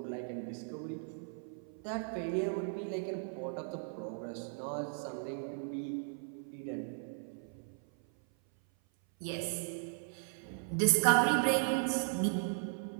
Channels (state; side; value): silent; left; 53 dB below the other